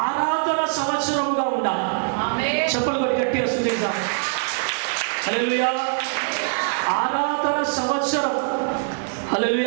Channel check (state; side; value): silent; left; digital silence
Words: ఆరాధన సంవత్సరముగా ఉండాలి. చెప్పలు కొట్టి గట్టిగా స్తుతించాలి. హల్లెలూయా. ఆరాధన సంవత్సరం.